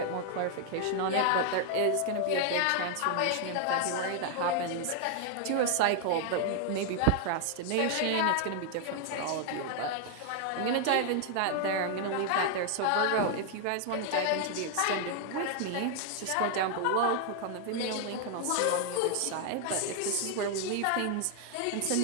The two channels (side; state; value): both; different; correlation 0.00